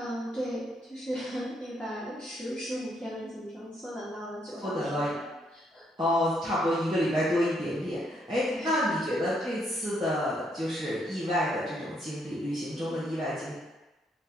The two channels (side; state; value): both; normal; correlation 0.73